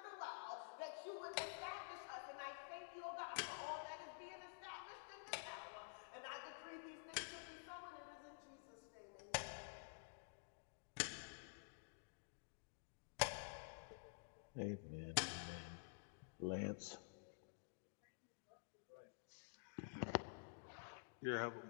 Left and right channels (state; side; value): silent; right; digital silence